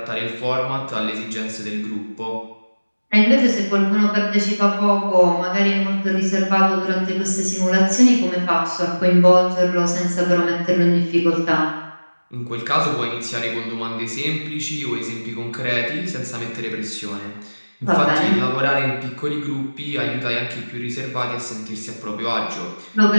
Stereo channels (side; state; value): both; inverted; correlation -1.00